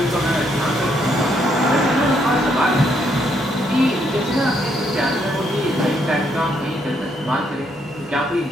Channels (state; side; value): normal; both; correlation 0.73